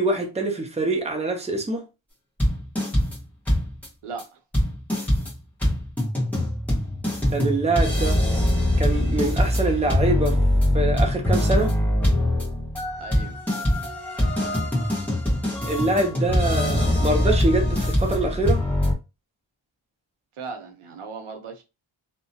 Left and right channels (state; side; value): normal; both; correlation 0.74